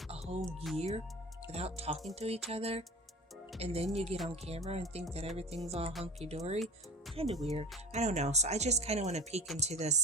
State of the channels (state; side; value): normal; both; correlation 0.35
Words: a whole year without talking to each other? And then you get on camera and think that everything's all hunky-dory. Kind of weird. I don't know. So I just kind of want to peek into the